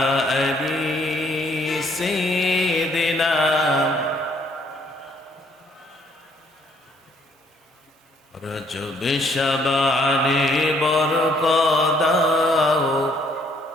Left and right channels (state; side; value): normal; both; correlation 0.65